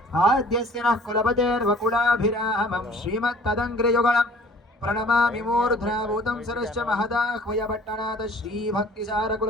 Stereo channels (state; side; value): normal; both; correlation 0.51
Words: आद्यस्य नः कुलपतेर्वकुलाभिरामं श्रीमत्तदङ्घ्रियुगळं प्रणमामि मूर्ध्नाभूतं सरश्च महदाह्वयपट्टनाथ